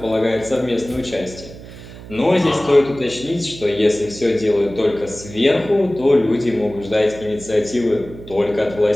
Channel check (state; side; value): noise; right; hum, 16 dB below the sound